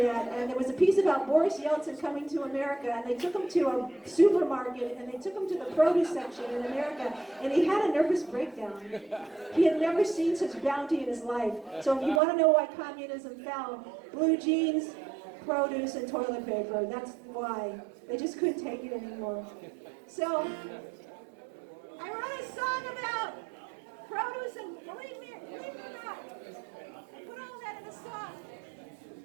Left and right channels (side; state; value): left; drops out; at 12.2 s